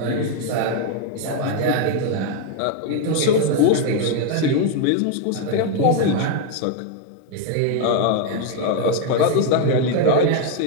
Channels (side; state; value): both; different; correlation 0.01